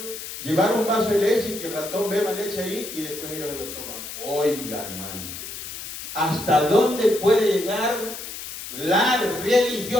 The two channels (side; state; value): left; noise; hiss, 9 dB below the sound